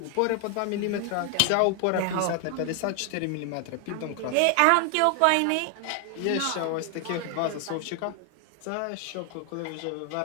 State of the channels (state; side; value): different; both; correlation 0.00